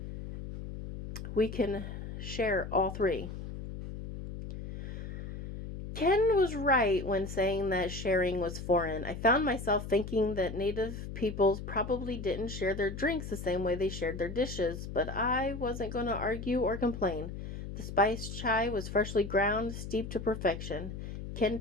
We can share all three. Ken was right when saying that sharing was foreign. I found myself thinking that native peoples probably didn't share their drinks the same way they shared their dishes, but I wasn't going to argue or complain. The spiced chai was freshly ground, steeped to perfection. Ken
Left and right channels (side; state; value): left; noise; hum, 8 dB below the sound